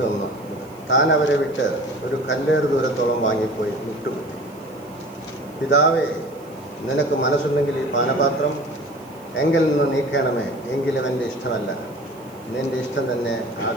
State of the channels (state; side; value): noise; right; hiss, 26 dB below the sound